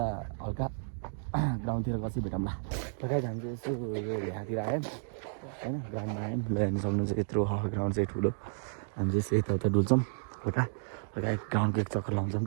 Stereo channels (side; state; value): left; silent; digital silence